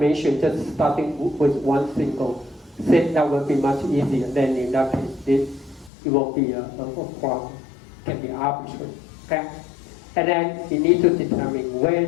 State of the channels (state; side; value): drops out; right; at 5.9 s